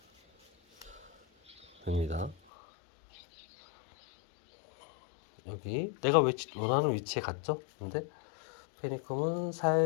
됩니다. 여기 내가 원하는 위치에 갔죠? 근데 페니쿰은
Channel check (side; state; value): right; drops out; at 2.4 s